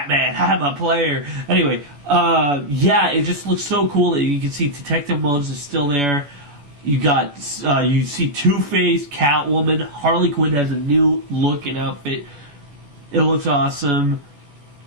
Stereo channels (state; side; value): late; left; 14 ms